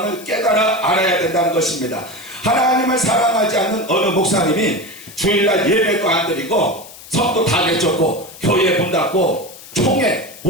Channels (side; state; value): left; noise; hiss, 18 dB below the sound